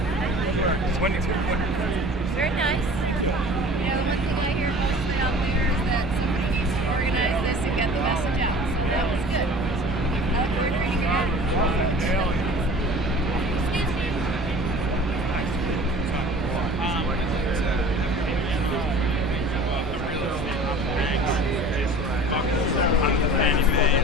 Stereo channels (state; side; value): normal; both; correlation 0.44